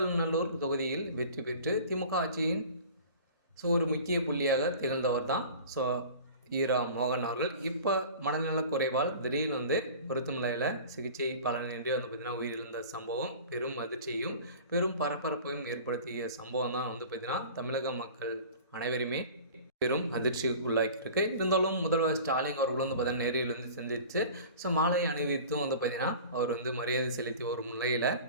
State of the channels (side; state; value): both; inverted; correlation -0.41